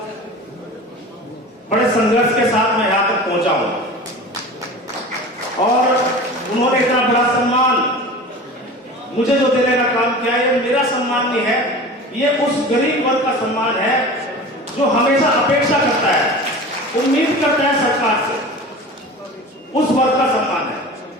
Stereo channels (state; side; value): normal; both; correlation 0.35